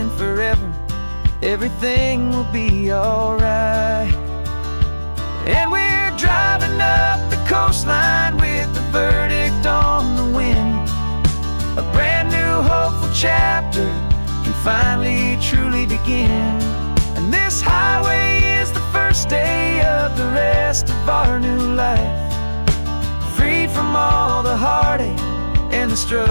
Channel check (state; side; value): inverted; both; correlation -1.00